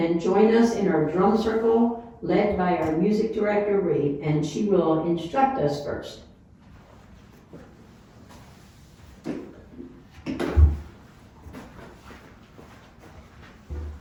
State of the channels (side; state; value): both; identical; correlation 1.00